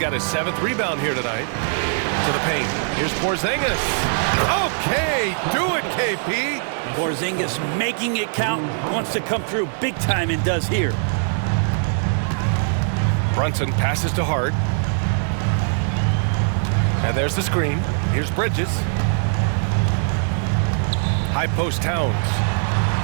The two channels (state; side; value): silent; left; 59 dB below the other